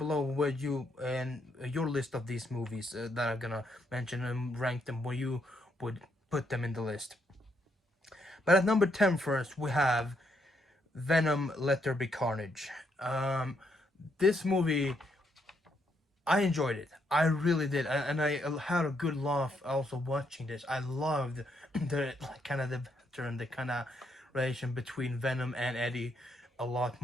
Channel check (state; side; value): normal; both; correlation 0.76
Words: where you and your list of these movies that I'm gonna mention, and rank them where you would put them in the list. But at number 10 first, we have Venom Let There Be Carnage. This movie, I enjoyed it. I really did. And I had a good laugh also watching this. I loved the kind of the banter and the kind of relation between Venom and Eddie a lot